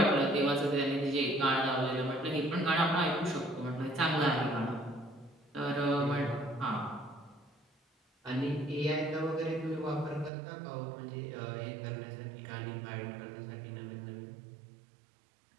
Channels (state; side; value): drops out; left; at 10.3 s